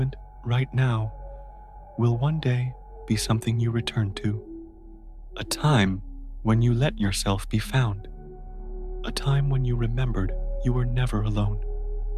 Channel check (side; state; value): both; identical; correlation 1.00